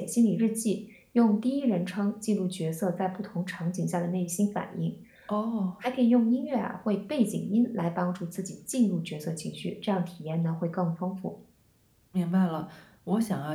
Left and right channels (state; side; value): identical; both; correlation 1.00